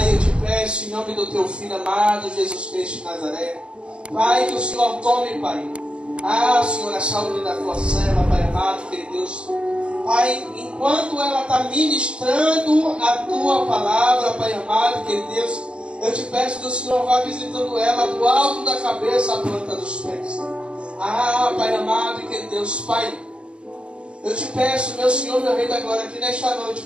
eu te peço em nome do teu Filho amado, Jesus Cristo de Nazaré, Pai, que o Senhor tome, Pai, Senhor, a saúde da tua serva, Pai amado, querido Deus. Pai, enquanto ela está ministrando a tua palavra, Pai amado, querido Deus, eu te peço que o Senhor vá visitando ela do alto da cabeça à planta dos pés. Pai amado, querido Deus, Pai, eu te peço, meu Senhor, meu Rei da Glória, que nesta noite,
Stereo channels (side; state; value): left; late; 0.057 ms